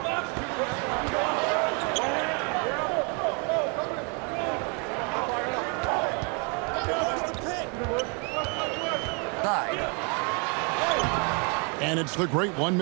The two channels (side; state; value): left; quieter; 35.7 dB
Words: And it's the great one